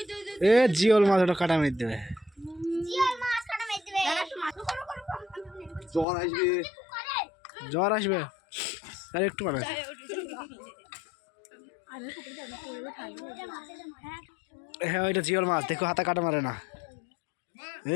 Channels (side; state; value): right; drops out; at 6.1 s